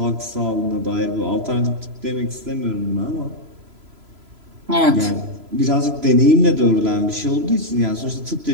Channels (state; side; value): late; left; 3.0 ms